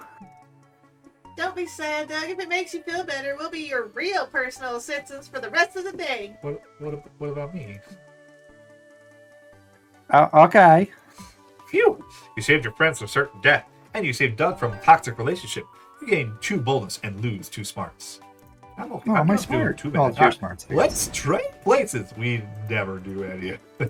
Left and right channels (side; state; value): both; identical; correlation 1.00